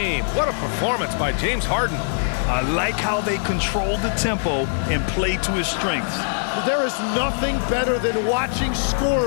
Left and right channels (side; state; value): right; silent; digital silence